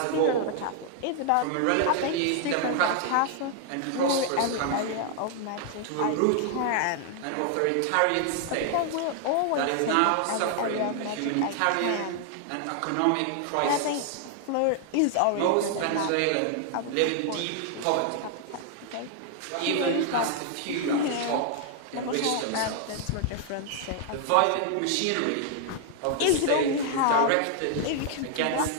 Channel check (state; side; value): different; both; correlation 0.00